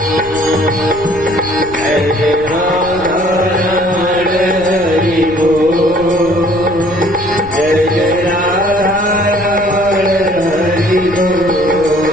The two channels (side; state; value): left; noise; rumble, 16 dB below the sound